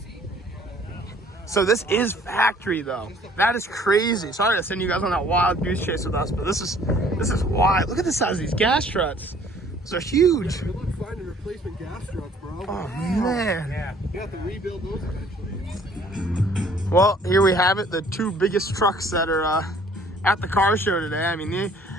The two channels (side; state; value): both; normal; correlation 0.57